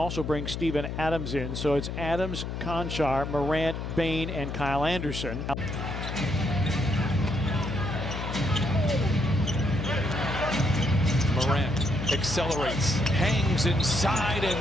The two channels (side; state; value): left; noise; hum, 5 dB below the sound